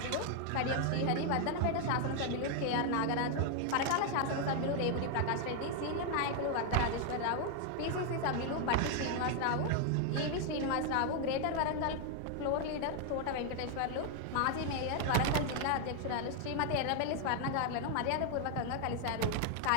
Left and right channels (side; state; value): both; different; correlation 0.00